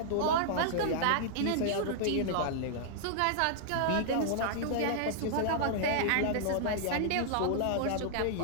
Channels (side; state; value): both; different; correlation -0.01